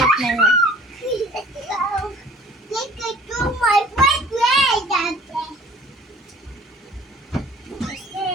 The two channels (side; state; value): both; normal; correlation 0.51